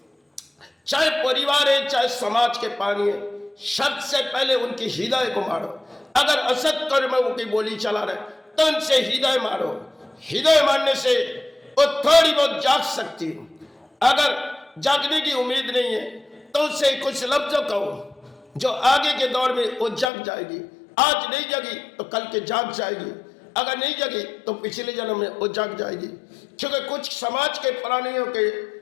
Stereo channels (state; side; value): drops out; right; at 20.1 s